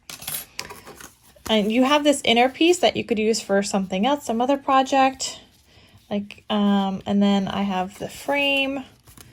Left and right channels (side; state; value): both; identical; correlation 1.00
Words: And you have this inner piece that you could use for something else, some other project. Like, and then I have the frame,